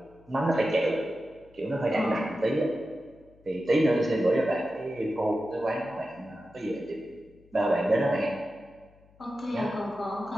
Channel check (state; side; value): noise; left; hum, 28 dB below the sound